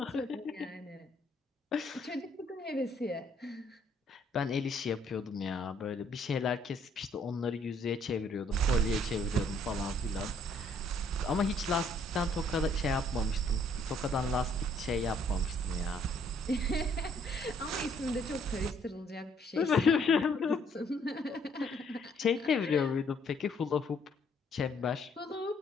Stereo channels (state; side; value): normal; both; correlation 0.65